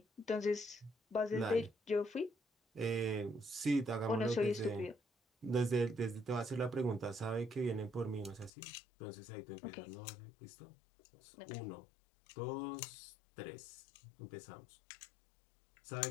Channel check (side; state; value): right; drops out; at 8.5 s